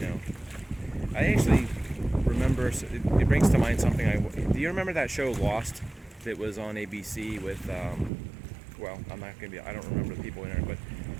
I actually remember, it brings to mind something. Do you remember that show Lost that was on ABC with, I don't remember the people in it, but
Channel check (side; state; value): left; drops out; at 8.1 s